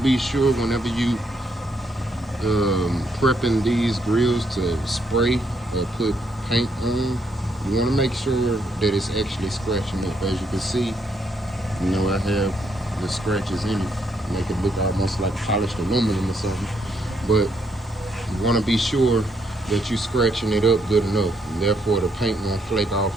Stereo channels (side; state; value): both; normal; correlation 0.74